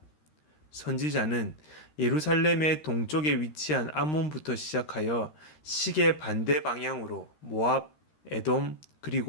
선지자는 예루살렘의 동쪽에 위치한 암몬부터 시작하여 시계 반대 방향으로 모압, 에돔,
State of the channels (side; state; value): right; late; 13 ms